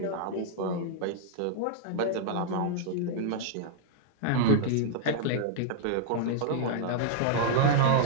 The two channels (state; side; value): different; both; correlation -0.02